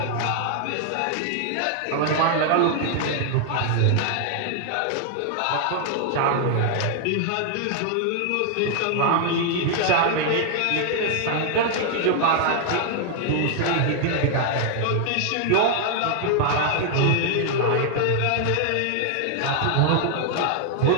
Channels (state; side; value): different; both; correlation 0.00